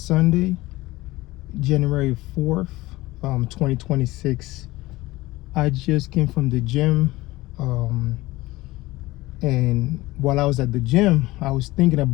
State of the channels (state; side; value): quieter; right; 19.2 dB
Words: January 4th, 2026. I just came from the gym. Um, and while I was at the gym, I was thinking